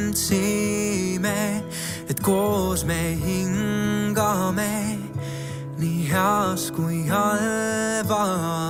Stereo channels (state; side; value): identical; both; correlation 1.00